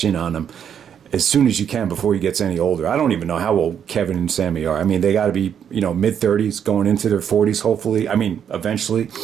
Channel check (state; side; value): quieter; left; 8.4 dB